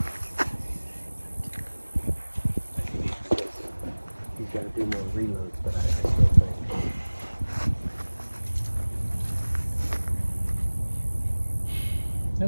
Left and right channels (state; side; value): inverted; both; correlation -1.00